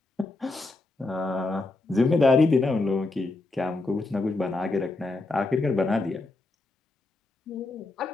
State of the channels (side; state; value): right; quieter; 3.2 dB